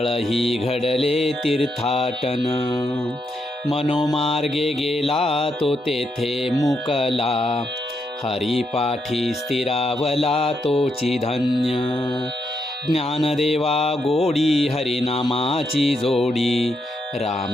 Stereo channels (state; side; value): normal; both; correlation 0.80